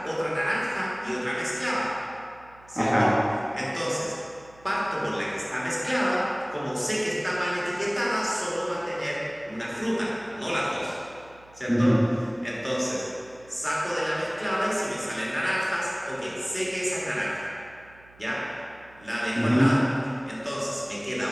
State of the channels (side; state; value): right; noise; hum, 25 dB below the sound